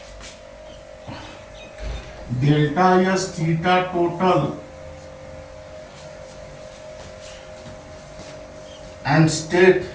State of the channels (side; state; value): both; identical; correlation 1.00